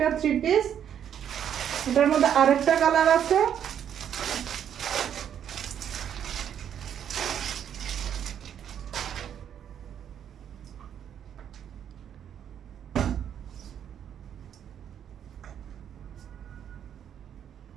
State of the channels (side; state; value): left; quieter; 9.2 dB